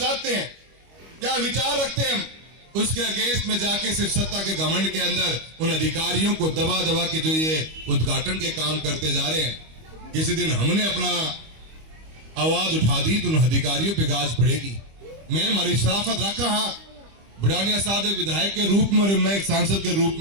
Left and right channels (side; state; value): left; late; 25 ms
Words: हैं, क्या विचार रखते हैं, हम उसके अगेंस्ट में जाके सिर्फ सत्ता के घमंड के अंदर उन अधिकारियों को दबा दबा के जो ये उद्घाटन के काम करते जा रहे हैं। किसी दिन हमने अपना आवाज उठा दी तो उन अधिकारियों पे गाज पड़ेगी। मैं हमारी शराफत रखा, हाँ, बुढ़ानिया साहब एक विधायक के रूप में और मैं एक सांसद के रूप